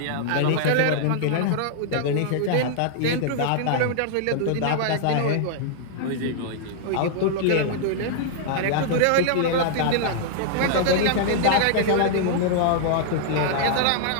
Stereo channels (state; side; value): different; both; correlation -0.01